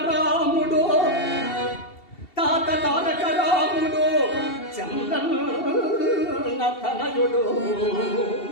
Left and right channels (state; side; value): late; right; 2.7 ms